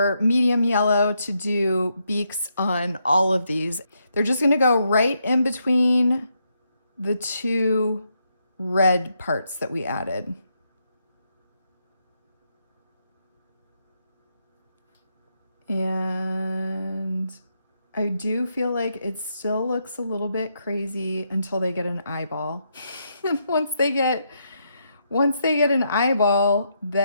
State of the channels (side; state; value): both; inverted; correlation -0.79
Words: medium yellow to do beaks on all of these. They're just gonna go right in between the 2 red parts that we added. And I do feel like it still looks a little bit crazy until they get an eyeball. And once they get an eyeball,